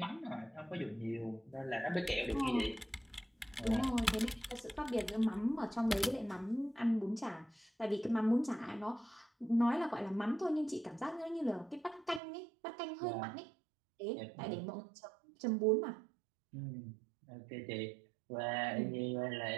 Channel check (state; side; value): drops out; left; at 12.2 s